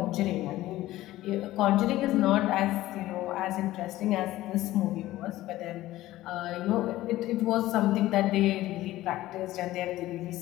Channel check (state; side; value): quieter; right; 16.0 dB